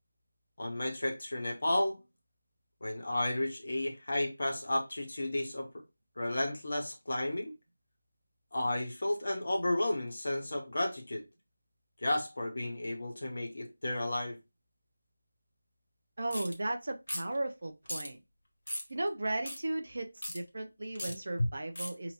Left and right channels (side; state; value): both; inverted; correlation -0.97